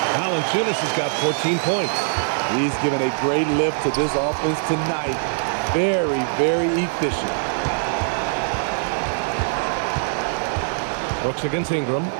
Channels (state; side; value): silent; left; 57 dB below the other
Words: Valanciunas has got 14 points. He's given a great lift to this offense tonight. Very, very efficient. Brooks against Ingram.